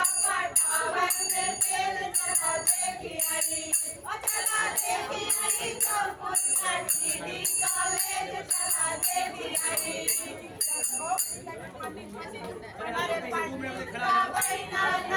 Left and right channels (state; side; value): identical; both; correlation 1.00